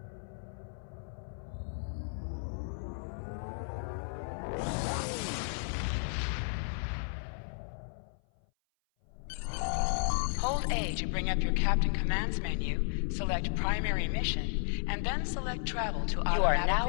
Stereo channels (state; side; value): silent; right; 55 dB below the other